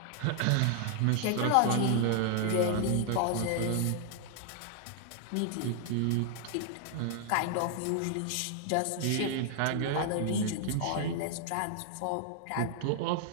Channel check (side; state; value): both; different; correlation 0.00